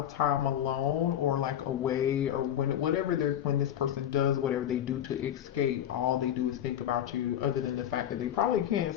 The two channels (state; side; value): quieter; right; 10.7 dB